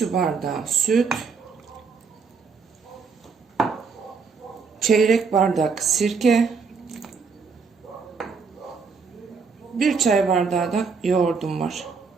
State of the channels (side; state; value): left; quieter; 5.2 dB